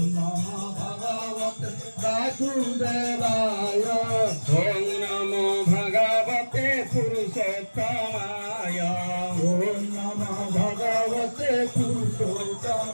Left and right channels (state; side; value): inverted; both; correlation -1.00